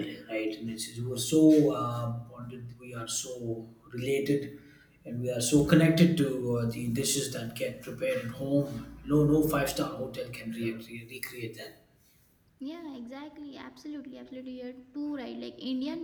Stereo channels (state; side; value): identical; both; correlation 1.00